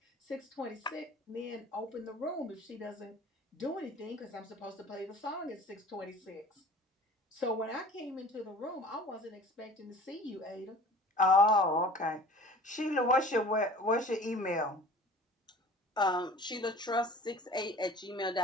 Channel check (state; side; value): normal; both; correlation 0.44